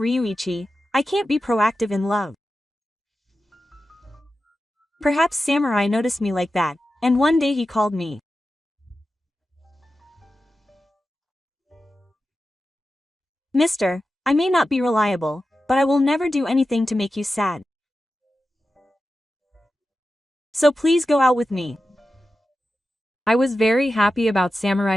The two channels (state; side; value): normal; both; correlation 0.92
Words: I can't be proactive in love. Perhaps Samurai noticed me like that, and one day he called me. Mister, I may not be reliable, but I will never do anything to make you sad. So please go out with me. I was very happy about